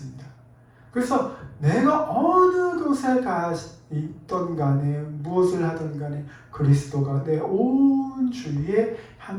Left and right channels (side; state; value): both; identical; correlation 1.00